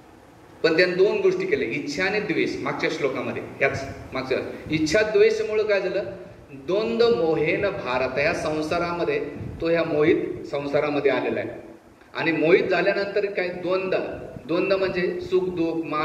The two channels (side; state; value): both; identical; correlation 1.00